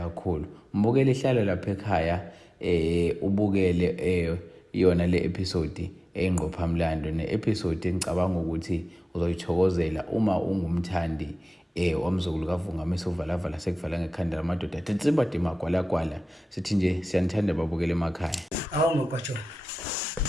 Mbukele ihlalo lapha ekhaya ubukele yona le episode engqophamlando ne-episode engicabanga ukuthi uzoyithokozela uma ungumthandi wamzukulu kaVungamisa uvalavala sekuvala ngekhanda lamadoda athensimba dima gwalagwala. Sithi nje siyanithanda babukele emakhaya. Awu mabhajo,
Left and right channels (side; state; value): both; normal; correlation 0.97